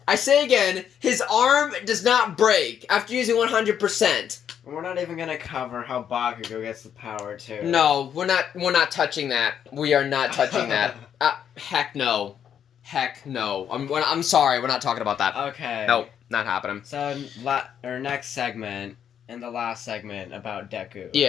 I say again, his arm does not break after using 100%. We're not even gonna cover how Bakugo gets the power, too. No, we're not touching that. We are not touching that. Heck no. Heck no. I'm sorry, we're not talking about that. Okay. Nope, not happening. So, our next segment... in the last segment about Deku.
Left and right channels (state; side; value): quieter; right; 8.8 dB